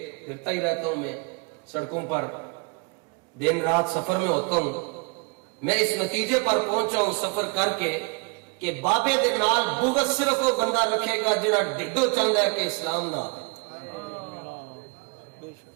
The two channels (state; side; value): quieter; left; 30.9 dB